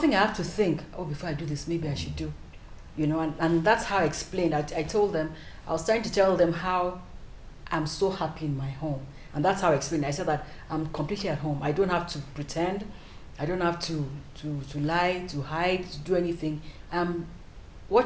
I have to think, oh, before I do this, maybe I should do. And that's how I explained. I told them, I was trying to tell them how I'm so happy in my home. And that's how I explained. I said that I'm completely at home. I don't have to pretend. I don't have to lie, to hide, to do anything.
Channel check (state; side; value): identical; both; correlation 1.00